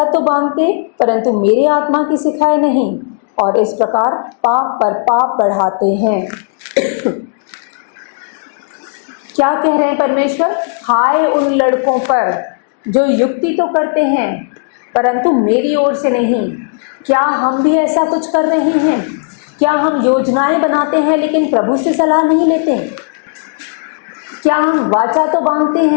तो बांधते परंतु मेरे आत्मा की सिखाए नहीं, और इस प्रकार पाप पर पाप बढ़ाते हैं। क्या कह रहे हैं परमेश्वर? हाय उन लड़कों पर जो युक्ति तो करते हैं परंतु मेरी ओर से नहीं। क्या हम भी ऐसा कुछ कर रहे हैं? क्या हम योजनाएं बनाते हैं लेकिन प्रभु से सलाह नहीं लेते? क्या हम वाचा तो बांधते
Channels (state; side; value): silent; right; digital silence